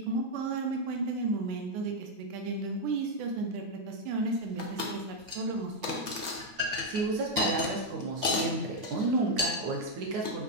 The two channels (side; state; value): left; late; 8.9 ms